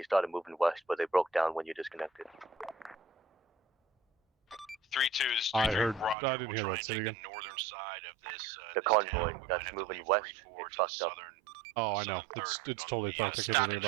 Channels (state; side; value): drops out; left; at 6.2 s